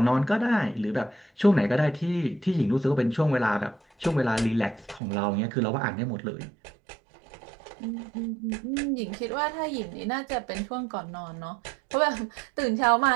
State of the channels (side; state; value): left; drops out; at 5.0 s